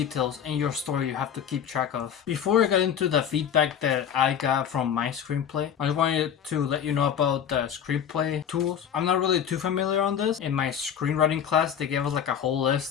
in your story you have to keep track of. Before I get into the feedback that I got from my screenplay, I wanted to let you know about the screenplay tools. I'm not really too familiar on this. In my screenwriting class, they gave us like a whole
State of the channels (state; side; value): quieter; right; 8.6 dB